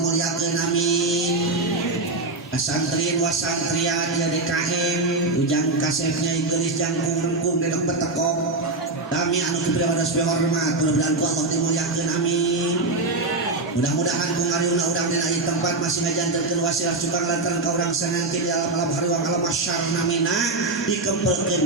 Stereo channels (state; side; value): quieter; left; 3.1 dB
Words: amin. Santrin wasantrian ya DKM ujang kasefnya gelis jangkung rengkung dedok betekok kami anu kepribados dihormat mudah-mudahan Allah dimuliakeun amin. Mudah-mudahan ku ngariuna urang dina ieu tempat masih ngajandelkeun wasilah cukang lantaran ka urang sanangkin di alam hariwang alam masyarna mina